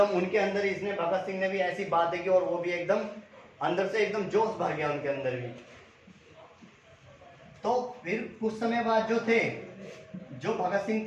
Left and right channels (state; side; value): identical; both; correlation 1.00